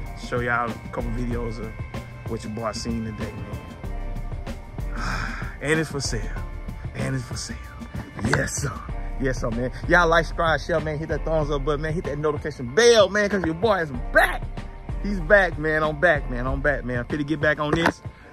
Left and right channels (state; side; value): identical; both; correlation 1.00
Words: a couple videos of what your boy seen today, man. And it's for sale. Yes, sir. Yes, sir, man. Y'all like, subscribe, share, man. Hit that thumbs up button, man. Hit that notification bell, man, because your boy is back. He's back, man. I'm back, man. I'm finna get back on this.